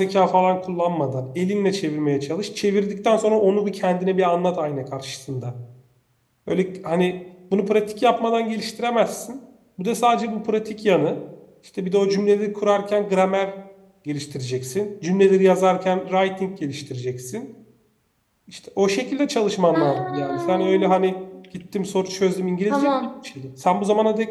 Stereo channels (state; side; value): identical; both; correlation 1.00